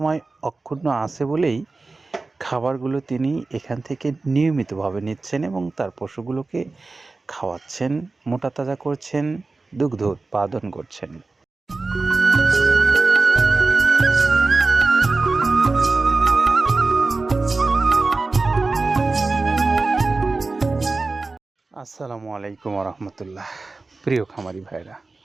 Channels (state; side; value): quieter; left; 3.6 dB